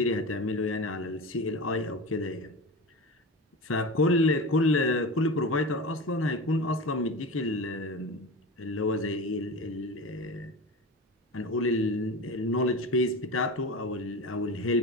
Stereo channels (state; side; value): normal; both; correlation 0.28